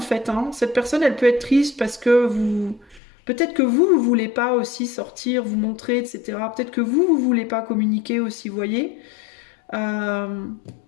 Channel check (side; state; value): right; drops out; at 3.0 s